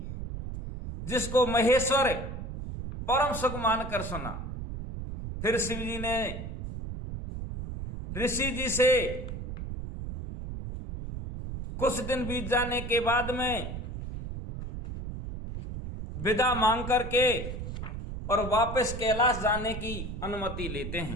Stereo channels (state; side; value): noise; right; rumble, 7 dB below the sound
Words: जिसको महेश्वर परम सुख मानकर सुना। फिर शिव जी ने ऋषि जी से कुछ दिन बीत जाने के बाद में विदा मांग करके और वापस कैलाश जाने की अनुमति लेते